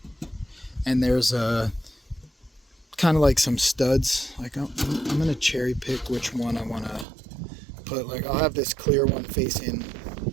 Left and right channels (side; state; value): left; drops out; at 7.1 s